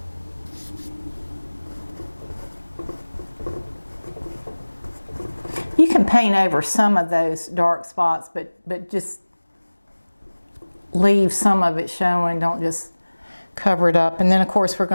You can paint over some of those dark spots, but just leave some of it showing. Don't just cover it up. And then of course we're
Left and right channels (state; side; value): inverted; both; correlation -1.00